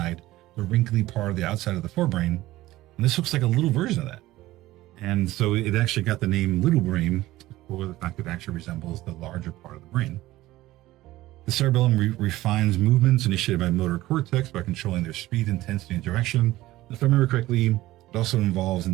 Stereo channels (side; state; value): left; quieter; 16.8 dB